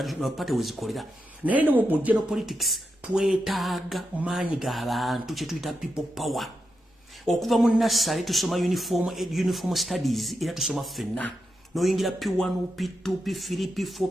party wezikolera naye ne mu general politics twetaaga maanyi g'abantu kye tuyita people power. Okuva mu nassale tusoma uniform studies era tusoma ffenna noyingira P1 P2 P3 P4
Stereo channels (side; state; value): both; normal; correlation 0.86